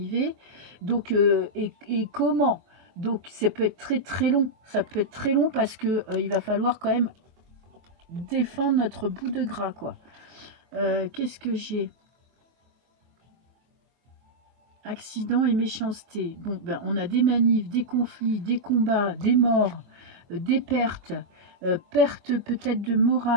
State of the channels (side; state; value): left; late; 23 ms